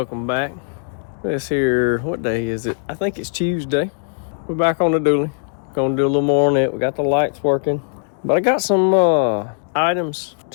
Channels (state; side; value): silent; right; digital silence